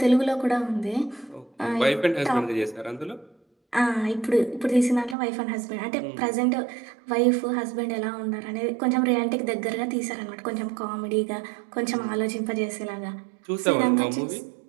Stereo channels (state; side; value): drops out; left; at 5.2 s